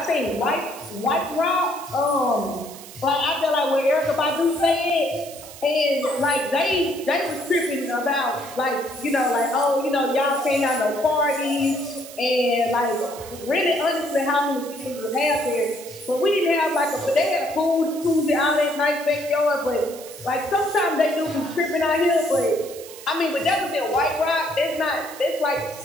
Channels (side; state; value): right; noise; hiss, 16 dB below the sound